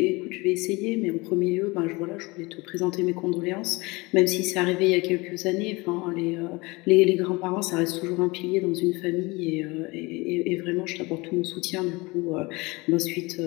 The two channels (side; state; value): right; quieter; 24.3 dB